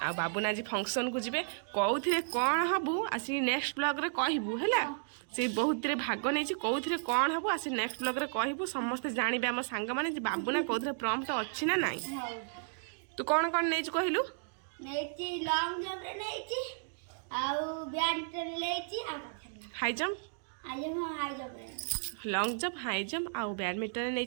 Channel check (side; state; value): left; silent; digital silence